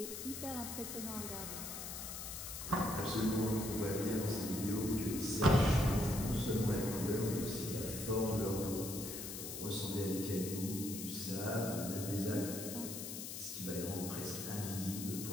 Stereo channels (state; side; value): noise; left; hiss, 7 dB below the sound